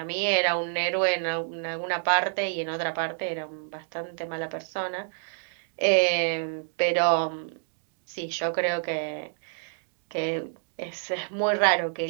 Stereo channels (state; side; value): silent; left; 59 dB below the other